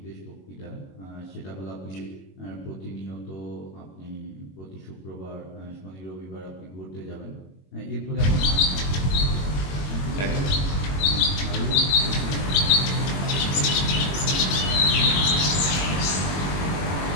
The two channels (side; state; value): right; late; 21 ms